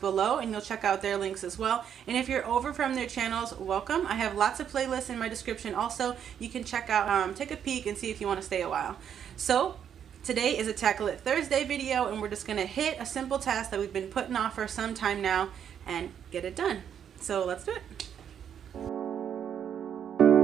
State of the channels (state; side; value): quieter; left; 8.7 dB